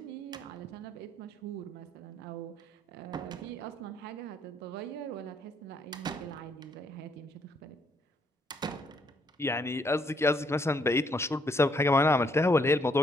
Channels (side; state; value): both; normal; correlation 0.70